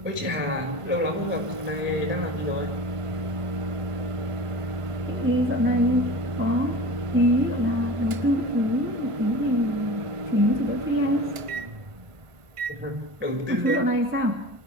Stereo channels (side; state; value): left; late; 1.4 ms